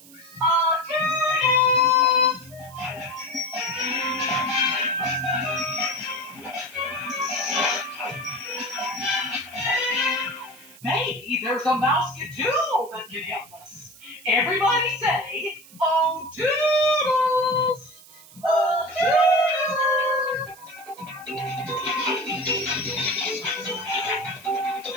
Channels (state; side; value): noise; right; hiss, 21 dB below the sound